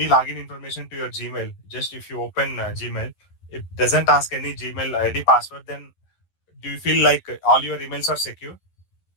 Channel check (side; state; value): right; late; 11 ms